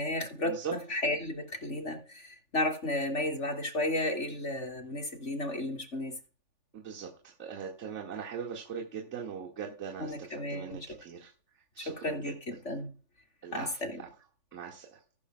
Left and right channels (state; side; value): late; right; 3.4 ms